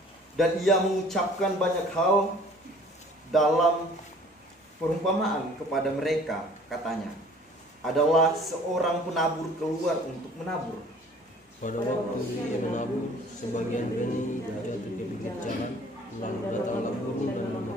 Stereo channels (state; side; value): normal; both; correlation 0.51